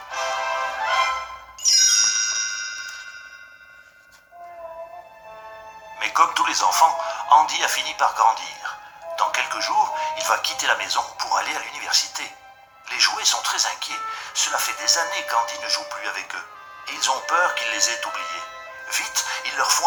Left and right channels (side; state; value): both; identical; correlation 1.00